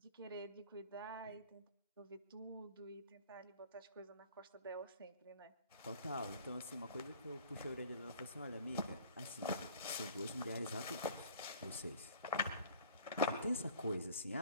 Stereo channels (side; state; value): both; inverted; correlation -0.49